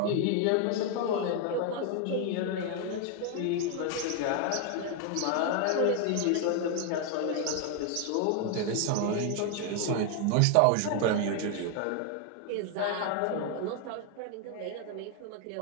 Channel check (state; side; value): different; both; correlation 0.00